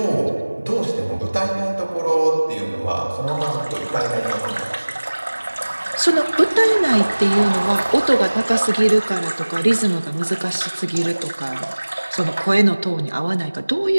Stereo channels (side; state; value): both; inverted; correlation -1.00